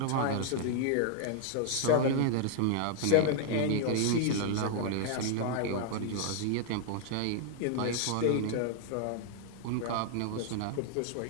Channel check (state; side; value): different; both; correlation 0.00